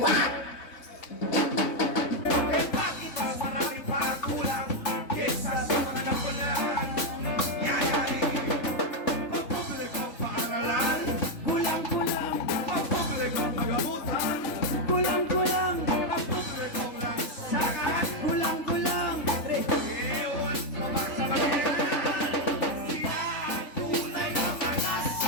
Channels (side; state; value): right; late; 3.6 ms